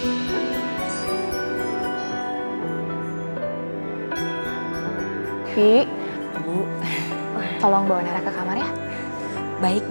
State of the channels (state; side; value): inverted; both; correlation -1.00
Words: Bi, Bu, tolong bawa Nara ke kamar ya. Baik